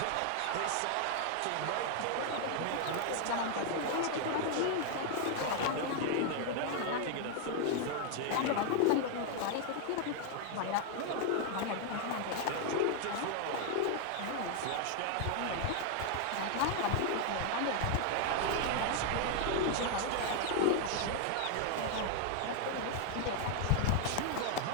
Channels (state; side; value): different; both; correlation 0.00